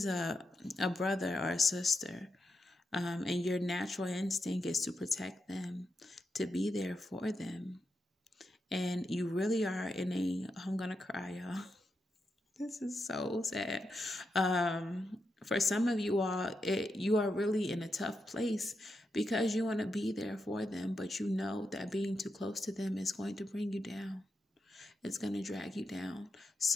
a brother or a sister. And your natural instinct is to protect them, to be there for them. And you really are in I'm going to cry, y'all. This is so sad. For some of you all, you are really in a tough place because you want to be there for them, but you know that being too close to them is going to bring you down. It's going to drag you down.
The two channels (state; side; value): normal; both; correlation 0.86